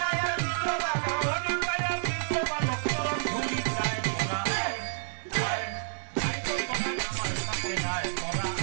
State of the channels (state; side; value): silent; left; digital silence